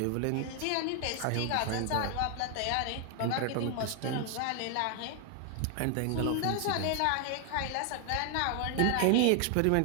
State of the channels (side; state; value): both; different; correlation 0.00